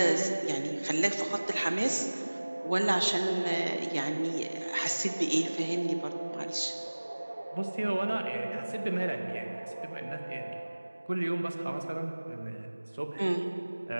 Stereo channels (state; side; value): inverted; both; correlation -1.00